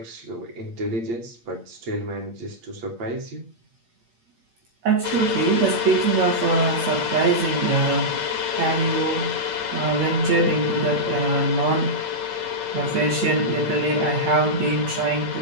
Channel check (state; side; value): late; left; 8.7 ms